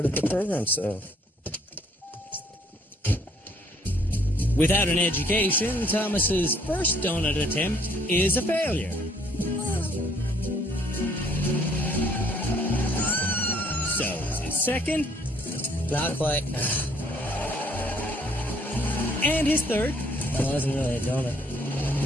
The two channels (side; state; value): both; normal; correlation 0.63